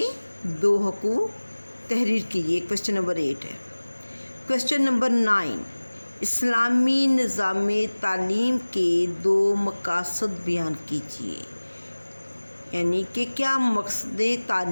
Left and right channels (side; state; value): both; inverted; correlation -1.00